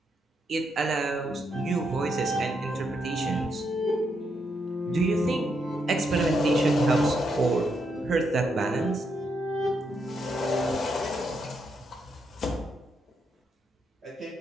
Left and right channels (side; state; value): both; normal; correlation 0.79